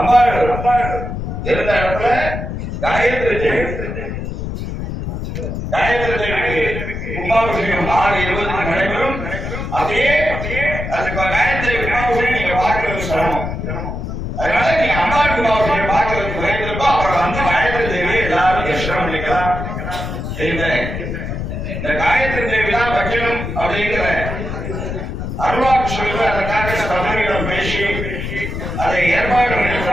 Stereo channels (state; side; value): noise; left; rumble, 5 dB below the sound